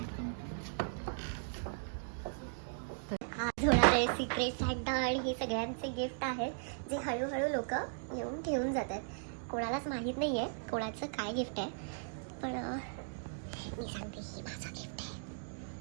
आज होणारे secret Santa आणि हे सगळ्यांचे gift आहेत जे हळूहळू लोक येऊन ठेवून जातात. कोणालाच माहीत नाही आहे कोणाचं काय गिफ्ट आहे, पण मी सांगते ही माझं गिफ्ट आहे.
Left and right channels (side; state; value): left; silent; digital silence